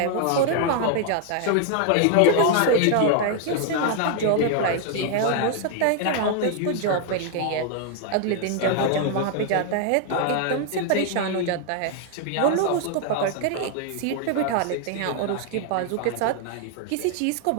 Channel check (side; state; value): both; different; correlation 0.00